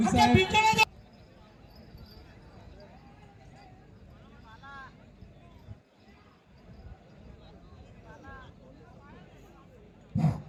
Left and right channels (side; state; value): both; identical; correlation 1.00